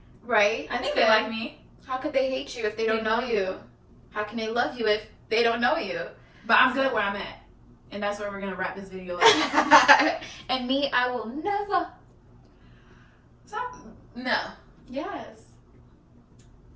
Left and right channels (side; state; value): both; identical; correlation 1.00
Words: Right? I think they like me. How could they hate you if they don't know you? How can they love you if they don't know you? But I'm good where I'm at. And that's where we're going to wrap this video up. And me, I will never. Stop. No. Yes.